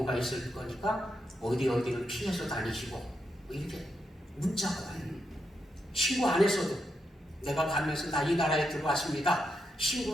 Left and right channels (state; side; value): normal; both; correlation 0.83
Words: 있을 거니까 어디를 피해서 다니시고 뭐 이렇게 문자가 와요. 신고 안 했어도 내가 가면서 나 이 나라에 들어왔습니다.